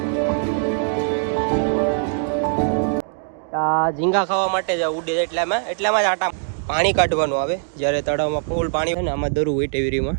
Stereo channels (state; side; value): silent; left; digital silence